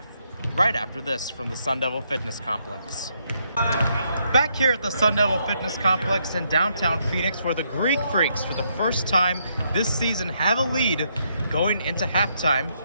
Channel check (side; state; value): both; inverted; correlation -0.75